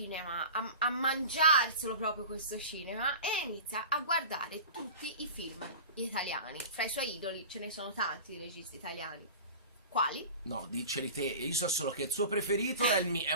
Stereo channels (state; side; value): inverted; both; correlation -0.35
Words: a mangiarselo proprio questo cinema, e inizia a guardare tutti i film italiani. Fra i suoi idoli ce ne sono tanti di registi italiani. Quali? No, diceli te. Io so solo che il suo preferito è